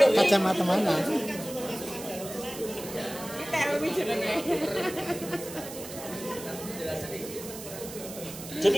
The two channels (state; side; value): noise; right; hiss, 12 dB below the sound